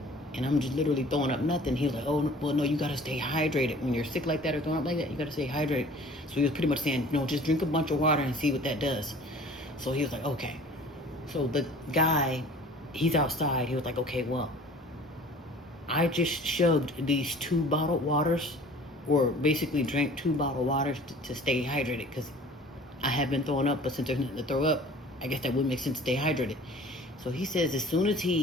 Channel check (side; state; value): both; normal; correlation 0.47